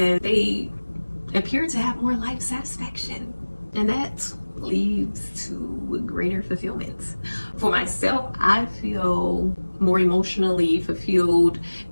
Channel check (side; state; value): both; inverted; correlation -1.00